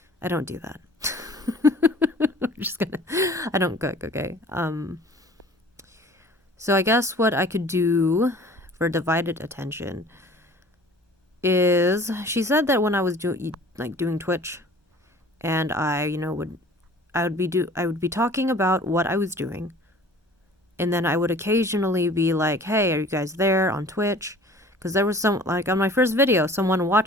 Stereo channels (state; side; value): normal; both; correlation 0.48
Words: don't do that. I don't cook, okay? So I guess what I could do for divided attention is, she said that when I was doing Twitch, and I would be talking about what I was doing, and then I would occasionally be like, hey, are you guys there on Twitch? Because there was some, like on my first video, someone